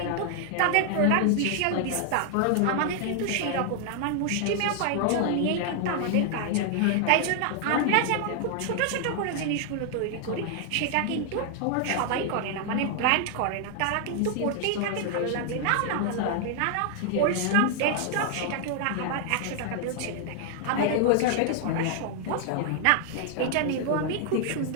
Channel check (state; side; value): different; both; correlation 0.00